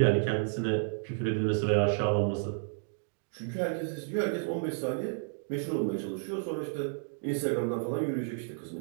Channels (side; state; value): left; silent; digital silence